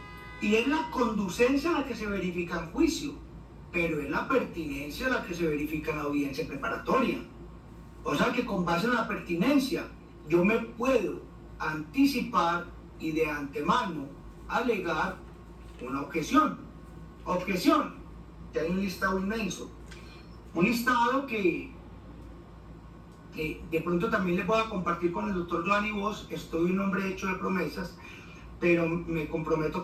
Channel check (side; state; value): both; identical; correlation 1.00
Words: y es la conducencia la que se verifica en juicio, pero es la pertinencia la que se verifica en la audiencia preparatoria. O sea que con base en la pertinencia yo me puedo anticipar y de antemano alegar una objeción, que hay un listado inmenso, un listado que de pronto también les voy a compartir con el doctor Giovanni Vos. Estoy un hombre hecho de promesas, pero me comprometo